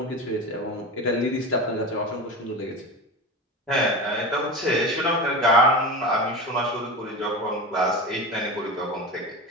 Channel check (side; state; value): both; normal; correlation 0.26